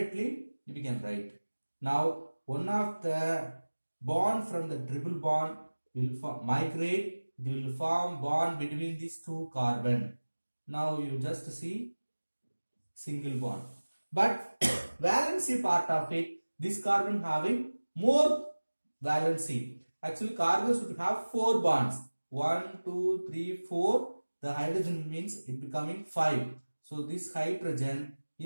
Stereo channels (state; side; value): inverted; both; correlation -1.00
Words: we can write. Now one of the bond from the triple bond will migrate. It will form bond between these 2 carbon. Now you just see single bond. But valency part of it, this carbon having more valency. Actually carbon should have 4 bonds. 1, 2, 3, 4. The hydrogen means it becoming 5. So this hydrogen